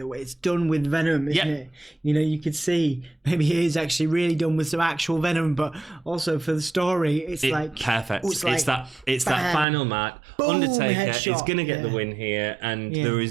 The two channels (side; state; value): left; drops out; at 9.7 s